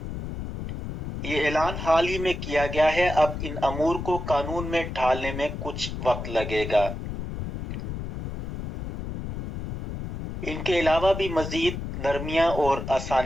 ये ऐलान हाल ही में किया गया है। अब इन अमूर को कानून में ढालने में कुछ वक्त लगेगा। इनके अलावा भी मज़ीद नरमियाँ और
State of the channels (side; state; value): left; noise; rumble, 7 dB below the sound